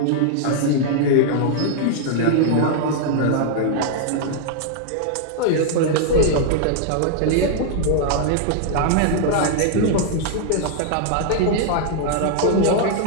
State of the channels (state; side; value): different; both; correlation -0.01